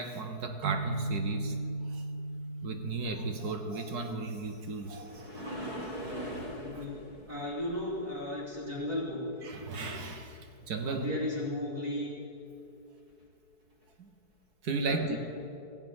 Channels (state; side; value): late; left; 4.7 ms